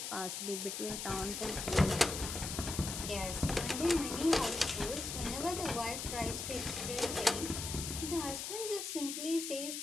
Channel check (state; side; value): noise; left; hiss, 5 dB below the sound